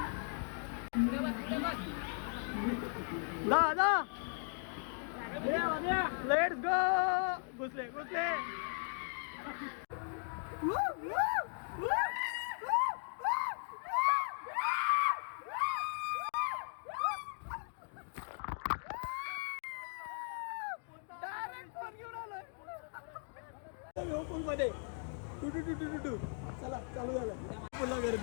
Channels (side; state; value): right; silent; 52 dB below the other